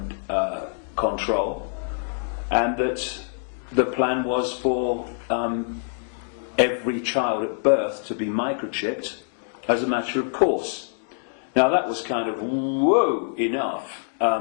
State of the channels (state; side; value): silent; right; digital silence